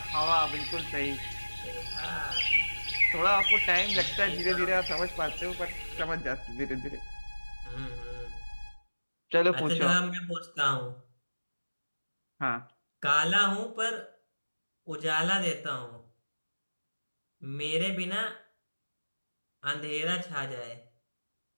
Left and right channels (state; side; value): inverted; both; correlation -1.00